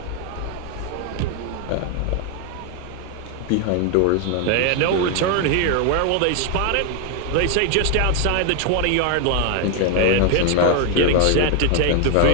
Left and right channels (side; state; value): both; different; correlation 0.01